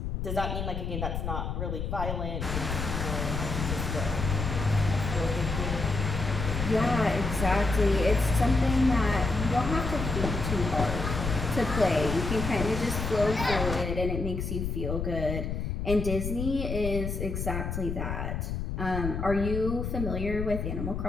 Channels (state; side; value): noise; left; rumble, 3 dB below the sound